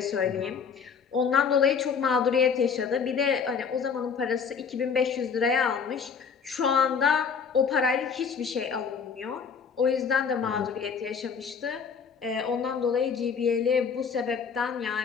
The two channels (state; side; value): quieter; right; 6.2 dB